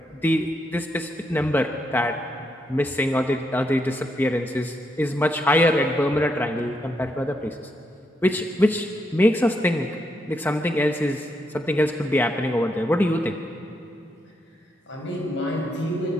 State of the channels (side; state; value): both; normal; correlation 0.80